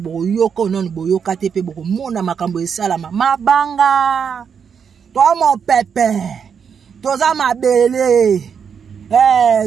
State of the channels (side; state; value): left; quieter; 6.9 dB